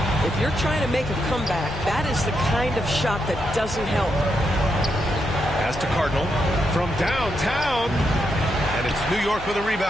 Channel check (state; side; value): noise; left; hum, 14 dB below the sound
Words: If you're trying to make a comeback, that is the kind of shot that doesn't help. Pass to Cardinal from downtown. And it's New York with a